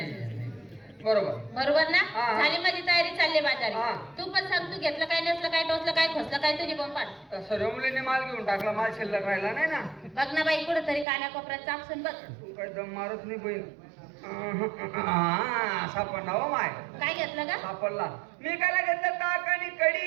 बरोबर. बरोबर ना? हा. झाली माझी तयारी, चालली हा. बाजारी. तू पण सांग, तू घेतलं काय, नेसलं काय, टोचलं काय, खोसलं काय, तुझी बोंबाट. तर सर्व मुलीने माल घेऊन टाकला, माल शिल्लक राहिला नाही ना. बघ ना बाई, कुठं तरी कानाकोपऱ्यात चापसून बघ. तू काय दम मारत नाही बहीण. सापडला हो माय. काय घेतलं का? सापडला. मी काय घेतलं ताक आणि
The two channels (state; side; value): drops out; left; at 11.1 s